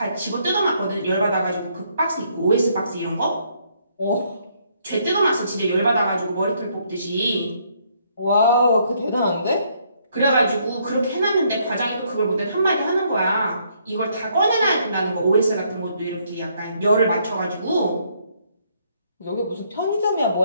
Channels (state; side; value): inverted; both; correlation -0.70